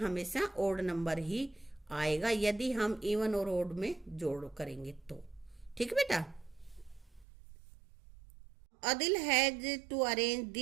ओड नंबर ही आएगा यदि हम इवन और ओड में जोड़ करेंगे तो। ठीक है बेटा। Adil has to arrange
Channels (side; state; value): left; drops out; at 7.2 s